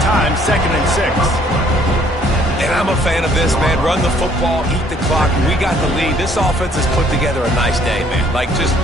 2nd and 6. And I'm a fan of this, man. Run the football, eat the clock. We got the lead. This offense has put together a nice day, man. Like, just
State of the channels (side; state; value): both; normal; correlation 0.62